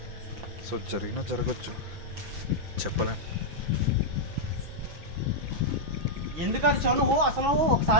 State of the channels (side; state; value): left; late; 6.1 ms